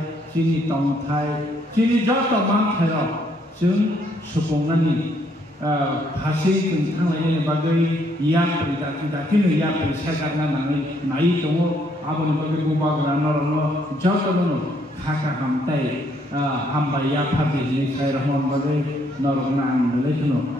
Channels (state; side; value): normal; both; correlation 0.70